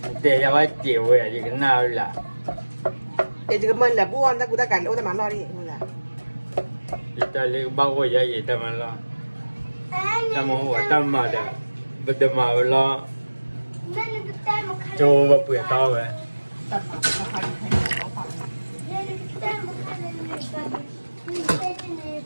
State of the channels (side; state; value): both; inverted; correlation -1.00